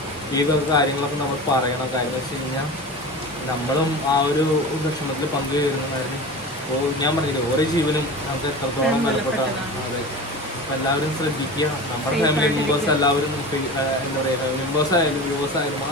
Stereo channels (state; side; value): normal; both; correlation 0.32